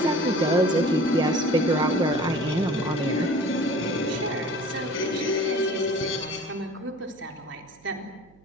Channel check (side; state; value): right; noise; hum, 29 dB below the sound